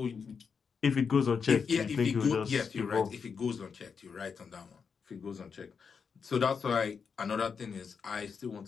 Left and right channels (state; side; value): quieter; right; 6.0 dB